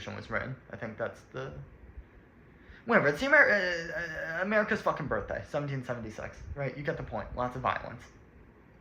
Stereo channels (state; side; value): identical; both; correlation 1.00